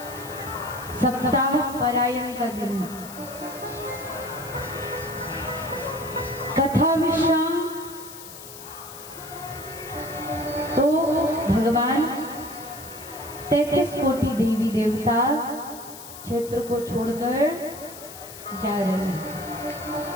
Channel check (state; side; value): noise; left; hiss, 14 dB below the sound